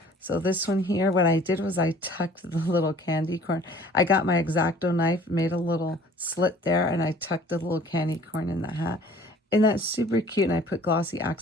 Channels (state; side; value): normal; both; correlation 0.51